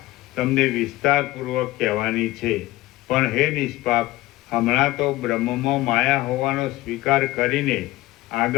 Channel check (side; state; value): right; quieter; 17.8 dB